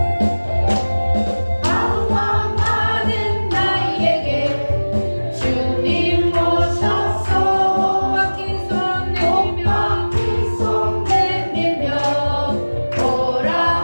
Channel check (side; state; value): both; inverted; correlation -1.00